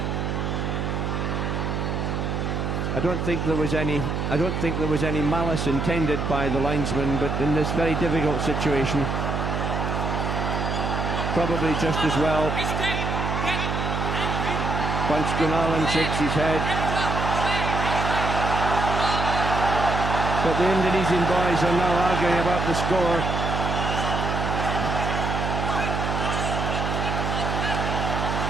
I don't think there was any malice intended by the linesman, but in this very difficult situation, probably just as well. Punch Gunawan shakes his head. But the Indonesian boys are now arguing about the score.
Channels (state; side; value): noise; right; hum, 1 dB below the sound